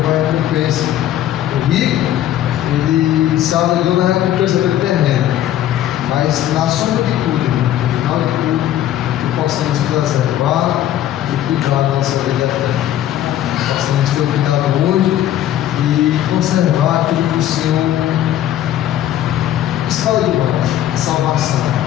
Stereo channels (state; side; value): quieter; right; 12.0 dB